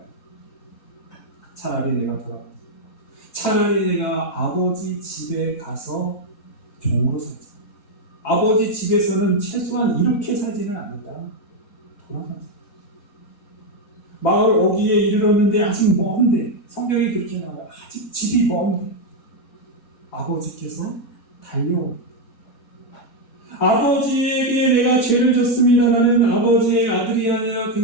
차라리 내가 돌아가. 차라리 내가 아버지 집에 가서 종으로 살자. 아버지 집에서는 최소한 이렇게 살지는 않는다. 돌아가자. 마을 어귀에 이르렀는데 아직 먼데, 성경이 그렇게 나와요. 아직 집이 먼데 아버지께서 달려옵니다. 아버지에게 내가 죄를 졌습니다. 나는 아버지의 아들이 아니라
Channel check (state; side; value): normal; both; correlation 0.04